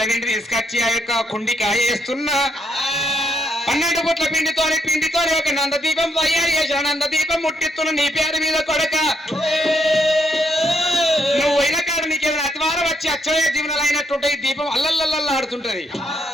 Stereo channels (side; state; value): both; normal; correlation 0.74